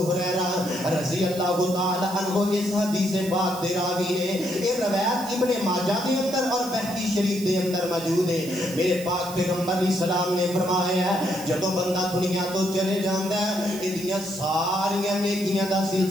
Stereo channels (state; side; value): noise; right; hiss, 14 dB below the sound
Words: ہریرہ رضی اللہ تعالی عنہ اس حدیث پاک دے راوی نے, یہ روایت ابن ماجہ دے اندر اور بہقی شریف دے اندر موجود ہے. میرے پاک پیغمبر علیہ السلام نے فرمایا ہے جدوں بندہ دنیا تو چلے جاندا ہے ایدیاں ساریاں نیکیاں دا